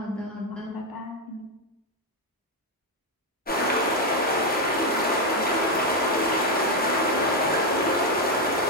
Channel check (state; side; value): normal; both; correlation 0.04